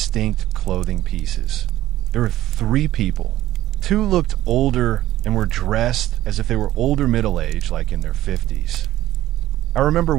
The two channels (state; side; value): quieter; left; 14.4 dB